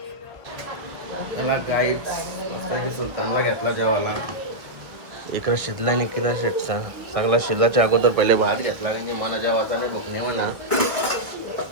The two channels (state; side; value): late; left; 1.5 ms